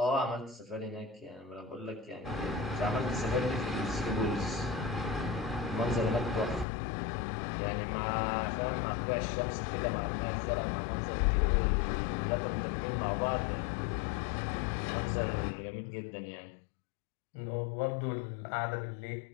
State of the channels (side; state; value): right; drops out; at 6.7 s